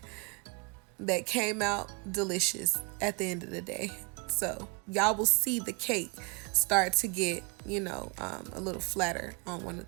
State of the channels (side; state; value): left; quieter; 32.4 dB